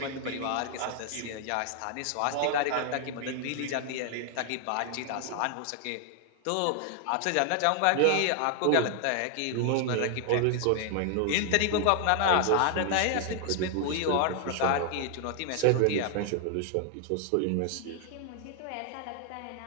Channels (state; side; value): different; both; correlation 0.00